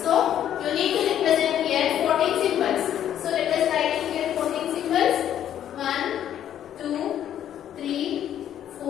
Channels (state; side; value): quieter; right; 10.5 dB